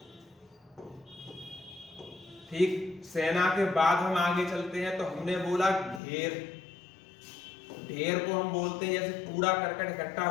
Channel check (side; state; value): right; drops out; at 6.0 s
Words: ठीक। सेना के बाद हम आगे चलते हैं तो हमने बोला ढेर। ढेर को हम बोलते हैं, जैसे कूड़ा करकट इकट्ठा